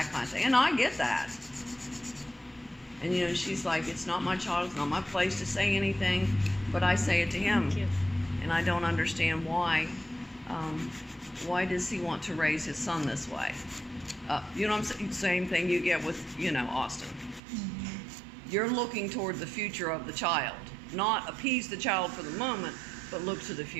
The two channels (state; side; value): drops out; left; at 17.4 s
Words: kind of thing. And I get that. And, you know, she's like, it's not my child, it's not my place to say anything, but I say it to him. And I don't understand why. Why does he want to raise his son this way? You know what I'm saying? Same thing you get with, you know, Austin. Mm-hmm. You're looking toward the future of the child. Not appease the child for the moment, but look to the